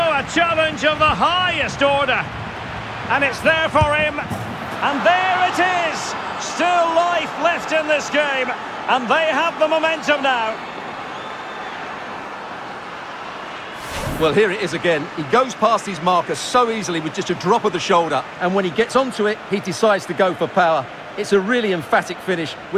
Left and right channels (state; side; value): identical; both; correlation 1.00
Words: challenge of the highest order. And it's there for him. And there it is. Still life left in this game. And they have the momentum now. Well, here it is again. He goes past his marker so easily with just a drop of the shoulder, and when he gets onto it, he decides to go for power. It's a really emphatic finish,